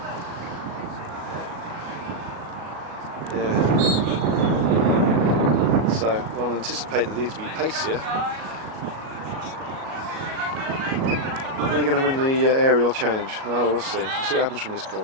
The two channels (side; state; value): left; late; 37 ms